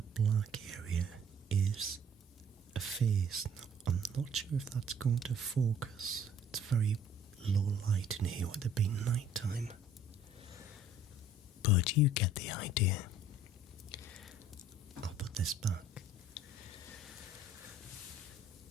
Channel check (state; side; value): normal; both; correlation 0.55